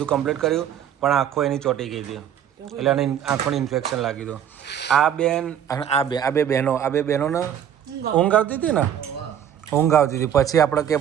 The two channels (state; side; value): quieter; left; 9.6 dB